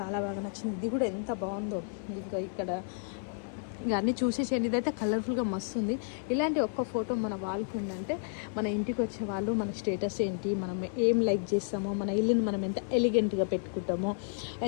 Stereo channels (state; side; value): silent; right; digital silence